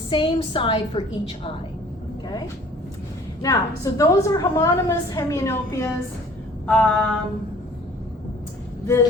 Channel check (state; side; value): normal; both; correlation 0.52